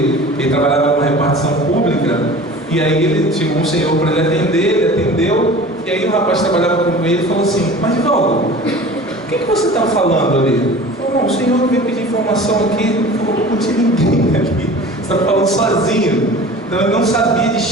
ele trabalhava numa repartição pública, e aí ele chegou um senhor para ele atender, ele atendeu, e aí o rapaz que trabalhava com ele falou assim: mas Valdo, o que você está falando ali? Ele falou: não, o senhor veio pedir informação aqui, não tinha ninguém aqui, você está falando sozinho. Então ele não sabia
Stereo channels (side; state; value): both; normal; correlation 0.40